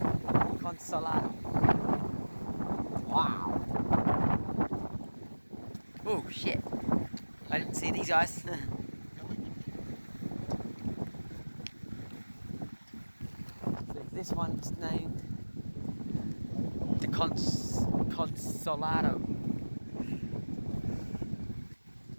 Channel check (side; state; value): both; inverted; correlation -1.00